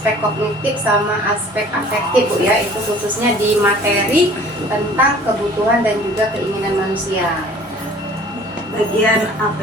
kognitif sama aspek afektif Bu ya, itu khususnya di materi tentang kebutuhan dan juga keinginan manusia. Bagian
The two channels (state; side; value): normal; both; correlation 0.49